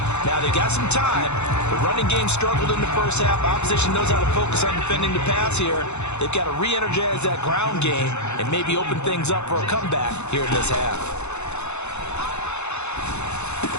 Now, they've got some time. The running game struggled in the first half. Opposition knows how to focus on defending the pass here. They've got to re-energize that ground game and maybe open things up for a comeback here in this half.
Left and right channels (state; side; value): late; right; 0.82 ms